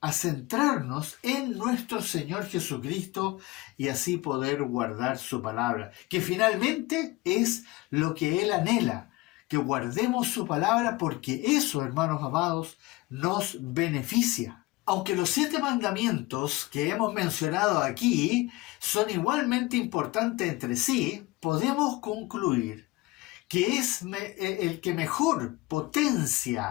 en nuestro Señor Jesucristo y así poder guardar su palabra, que finalmente es lo que Él anhela, que guardemos su palabra porque eso, hermanos amados, nos beneficia. Aunque los 7 mandamientos que hemos mencionado aquí son igualmente importantes entre sí, podemos concluir que es el que mejor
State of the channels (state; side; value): quieter; right; 20.4 dB